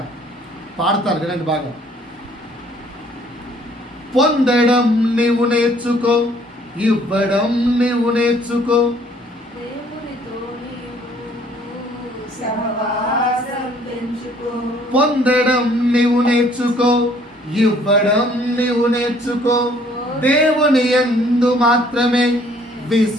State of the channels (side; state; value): both; normal; correlation 0.60